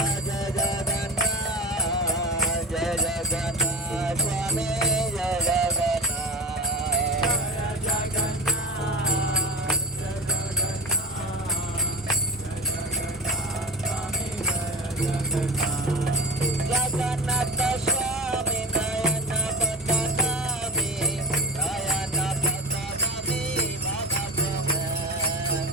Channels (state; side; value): normal; both; correlation 0.30